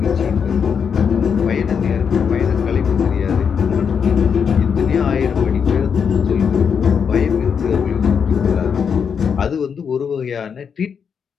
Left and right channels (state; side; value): quieter; right; 6.8 dB